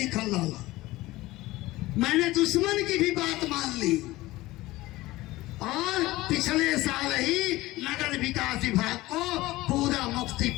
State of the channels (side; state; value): right; quieter; 18.6 dB